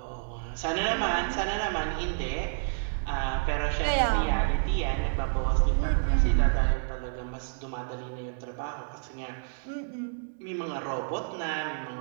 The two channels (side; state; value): left; silent; digital silence